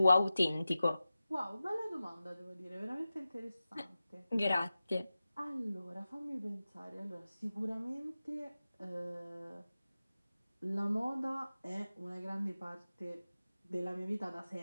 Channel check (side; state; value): both; inverted; correlation -0.95